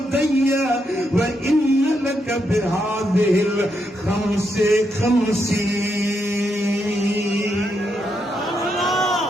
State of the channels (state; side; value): normal; both; correlation 0.81